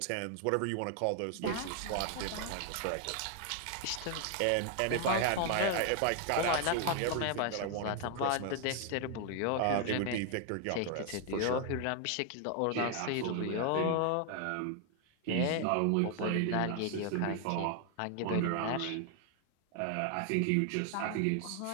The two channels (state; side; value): different; both; correlation 0.00